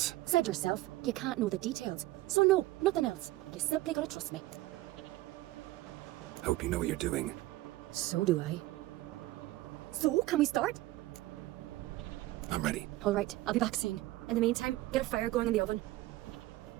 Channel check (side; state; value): left; quieter; 17.3 dB